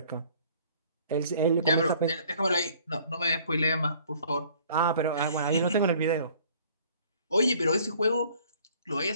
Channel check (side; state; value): both; inverted; correlation -0.56